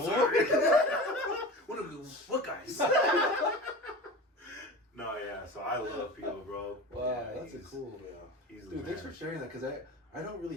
sorry. What guys? No, yeah. So I love Pio, bro. Wow, yeah, that's a cool. Yeah, he's the Dude, thanks man. for sharing that, because I don't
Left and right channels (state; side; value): normal; both; correlation 0.33